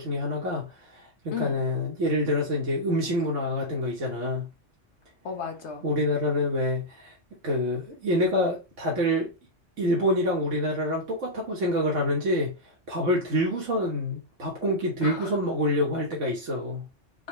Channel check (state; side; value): normal; both; correlation -0.10